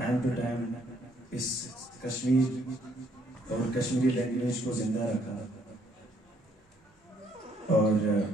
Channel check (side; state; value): both; normal; correlation 0.68